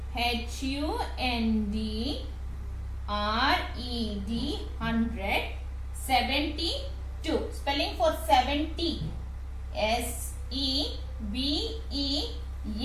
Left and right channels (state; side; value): identical; both; correlation 1.00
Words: H-U-N-D-R-E-D. 100. 72. Spelling for 70?